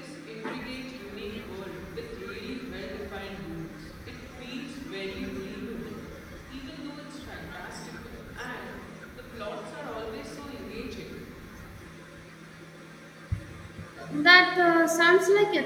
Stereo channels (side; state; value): both; identical; correlation 1.00